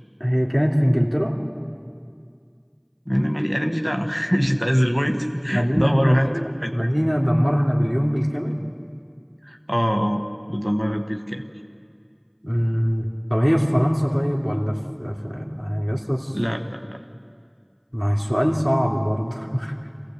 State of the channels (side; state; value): both; identical; correlation 1.00